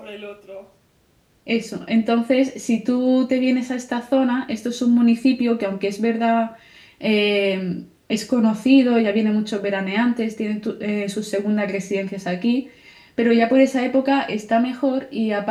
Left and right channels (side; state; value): both; identical; correlation 1.00